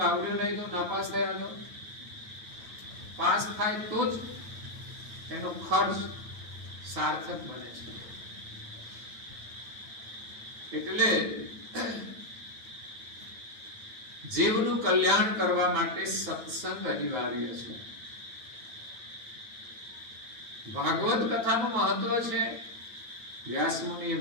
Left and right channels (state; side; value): late; left; 9.0 ms